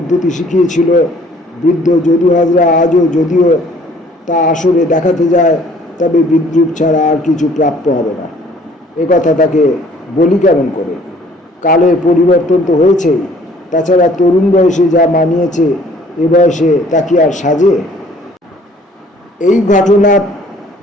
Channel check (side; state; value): both; normal; correlation 0.57